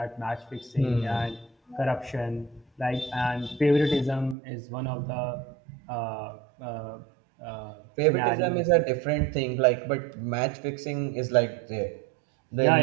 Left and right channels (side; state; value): left; drops out; at 4.4 s